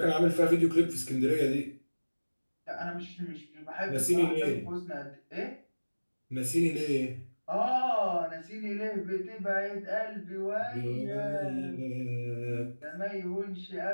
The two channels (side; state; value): both; inverted; correlation -1.00